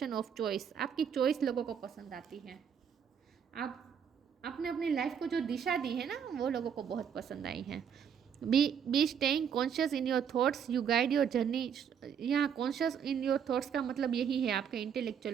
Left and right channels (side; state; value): left; quieter; 7.8 dB